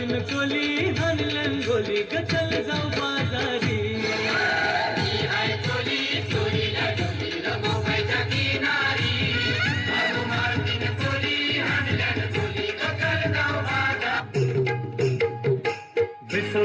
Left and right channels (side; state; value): both; identical; correlation 1.00